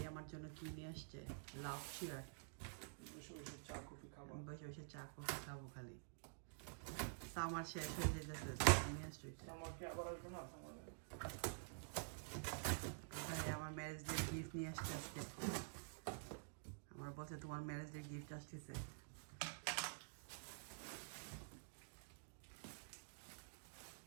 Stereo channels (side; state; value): left; silent; digital silence